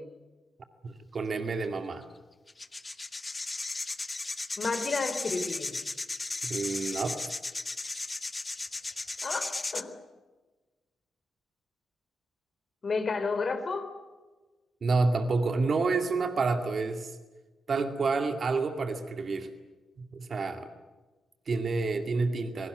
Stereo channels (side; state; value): both; normal; correlation 0.88